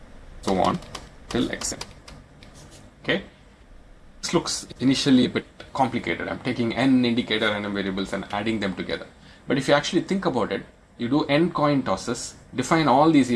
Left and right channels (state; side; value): identical; both; correlation 1.00